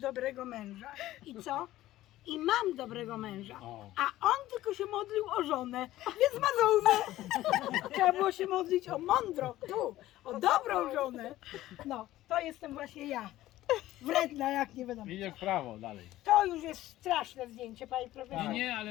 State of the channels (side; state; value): right; quieter; 15.2 dB